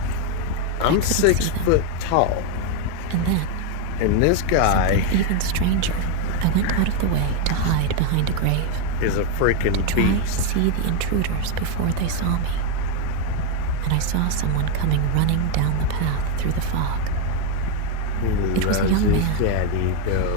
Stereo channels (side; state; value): both; different; correlation 0.01